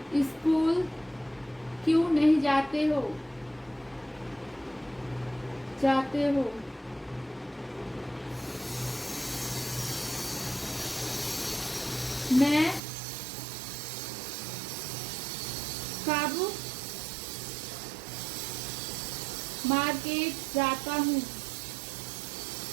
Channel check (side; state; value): left; drops out; at 12.8 s